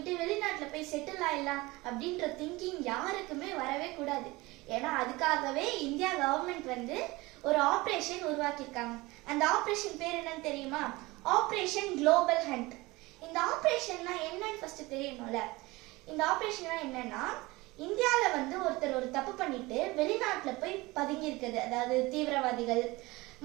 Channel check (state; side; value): quieter; left; 21.7 dB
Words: வெளிநாட்டுல போய் செட்டில் ஆயிடலாம் அப்படின்ற திங்கிங் யாருக்குமே வரவே கூடாது. ஏன்னா அதுக்காகவே இந்தியா கவர்மெண்ட் ஒரு ஆபரேஷன் உருவாக்கியிருக்காங்க. அந்த ஆபரேஷன் பேர் என்னன்னு தெரியுமா? Operation global hunt. இந்த ஆபரேஷன்னா என்னன்னு ஃபர்ஸ்ட் தெரியணும்ல. இந்த ஆபரேஷன்னா என்னன்னா, இந்தியால ஒருத்தர் ஒரு தப்பு பண்ணிட்டு வெளிநாட்டுல போய் பதுங்கி இருக்குது, அதாவது தீவிரவாதிகள்